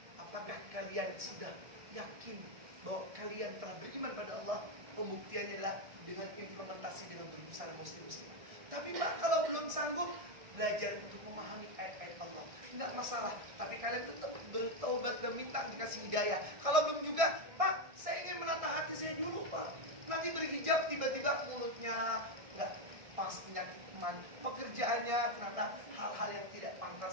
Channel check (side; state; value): left; late; 1.6 ms